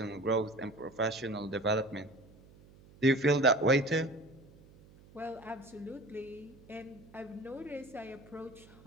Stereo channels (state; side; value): noise; right; hum, 23 dB below the sound